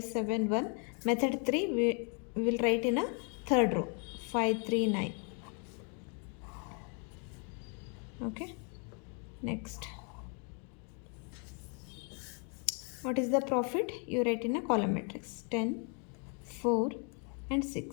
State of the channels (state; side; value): quieter; right; 38.7 dB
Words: Method 3 we will write in a third row, 539. Okay, next, what is the profit? You write in a column matrix, 10, 4 and